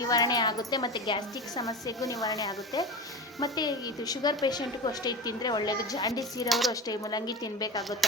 ಆಗುತ್ತೆ ಮತ್ತು ಗ್ಯಾಸ್ಟ್ರಿಕ್ ಸಮಸ್ಯೆಗೂ ನಿವಾರಣೆ ಆಗುತ್ತೆ. ಮತ್ತು ಇದು ಶುಗರ್ ಪೇಷಂಟ್ಗೂ ಅಷ್ಟೇ ಇದು ತಿಂದರೆ ಒಳ್ಳೆಯದು. ಜಾಂಡೀಸ್ ಇರೋರು ಅಷ್ಟೇ ಮೂಲಂಗಿ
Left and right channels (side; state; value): both; normal; correlation 0.27